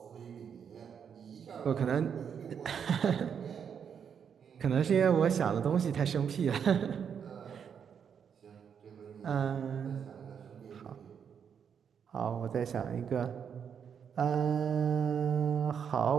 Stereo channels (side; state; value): left; quieter; 7.5 dB